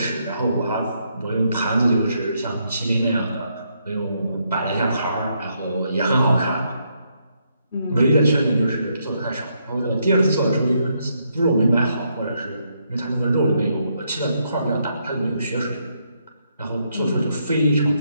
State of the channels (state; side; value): inverted; both; correlation -0.76